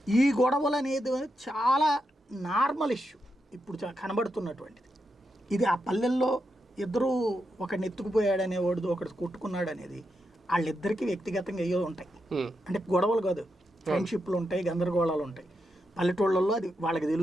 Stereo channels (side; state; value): both; normal; correlation 0.85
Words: ఈ గొడవలు అనేది చాలా నార్మల్ ఇష్యూ. ఇప్పుడు కనబడుతున్నటువంటిది. ఇది ఆ పల్లెల్లో ఇద్దరు ఒకడిని ఎత్తుకుపోయాడనే వాడు ఒకటి కొట్టుకున్నాడు అనేది వాళ్ళిద్దరికీ వ్యక్తిగతంగా అయ్యో ఉంటాయి. అంటే గొడవలు కాదు, ఫ్రెండ్షిప్లు ఉంటాయి, గందరగోళాలు ఉంటాయి. పల్లెటూళ్ళల్లో అది వాళ్ళకి